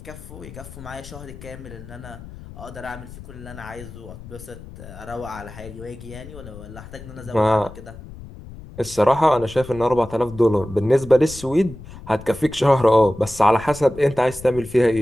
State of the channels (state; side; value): noise; left; rumble, 15 dB below the sound